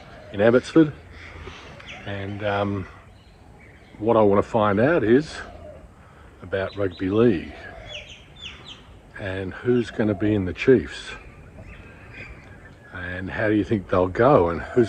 in Abbotsford, and what I want to find out is about Rugby League and who's going to be in the Chiefs and how do you think they'll go and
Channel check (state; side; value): identical; both; correlation 1.00